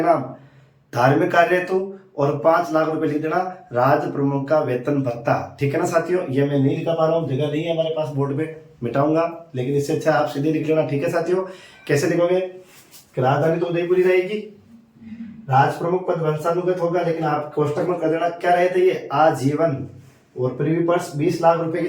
नाम धार्मिक कार्य हेतु, और 5 लाख रुपए लिख देना राज प्रमुख का वेतन भत्ता। ठीक है ना साथियों, ये मैं नहीं लिखा पा रहा हूँ, जगह नहीं है हमारे पास बोर्ड पे, मिटाऊंगा, लेकिन इससे अच्छा आप सीधे लिख लेना। ठीक है साथियों, कैसे लिखोगे कि राजधानी तो उदयपुरी रहेगी, राज प्रमुख पद वंशानुगत होगा, लेकिन आप कोष्टक में कर देना क्या रहे थे ये आजीवन, और प्रीव्यू पर्स 20 लाख रुपए की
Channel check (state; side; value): identical; both; correlation 1.00